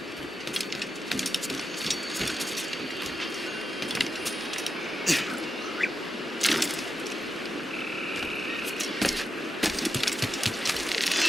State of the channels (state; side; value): normal; both; correlation 0.87